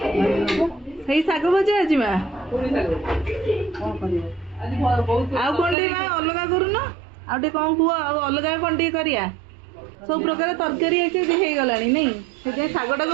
सही शाग भजा आज माँ आउ कौन माँ अलग करून आउ कौन कह अलग कौन करिया सब प्रकार तरकारी हो गला नहीं से शागटा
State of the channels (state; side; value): drops out; left; at 5.8 s